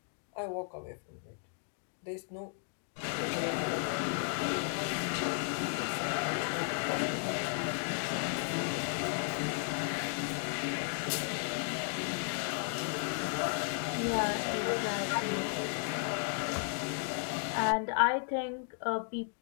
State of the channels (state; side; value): silent; right; 55 dB below the other